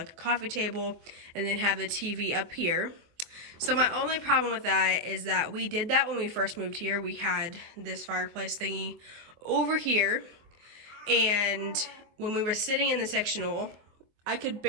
a coffee table and then have the TV up here. So my only problem with that is that we did that when we first moved here. We had this fireplace thingy over here, and when we were sitting in the sectional, I could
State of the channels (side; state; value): left; late; 24 ms